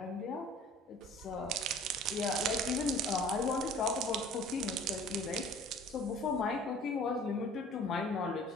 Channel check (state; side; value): normal; both; correlation 0.48